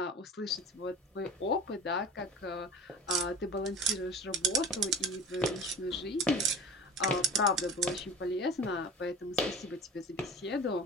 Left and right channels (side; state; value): both; normal; correlation 0.37